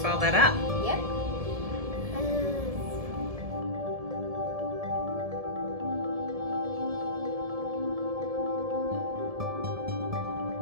all that up. Yep.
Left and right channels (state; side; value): late; left; 1.7 ms